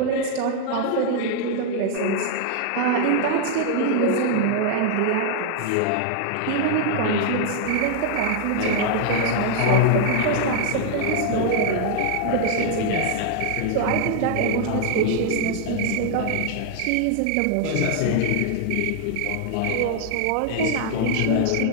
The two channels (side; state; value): both; different; correlation 0.00